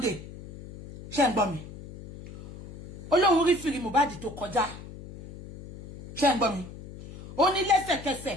Ṣé ń gbọ́ mi? Ó lóhun rí fìrí Mohbad tó kọjá. Ṣé ń gbọ́ mi? Ó ní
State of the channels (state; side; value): noise; left; hum, 15 dB below the sound